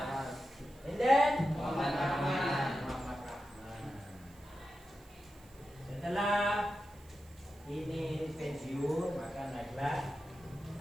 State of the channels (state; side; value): noise; right; hiss, 26 dB below the sound